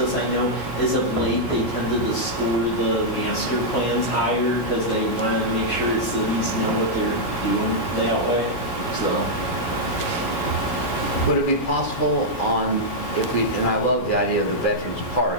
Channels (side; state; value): right; late; 16 ms